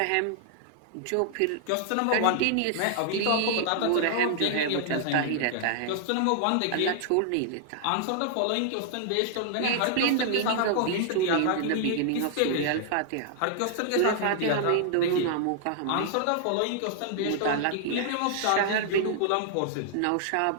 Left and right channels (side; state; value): both; different; correlation -0.01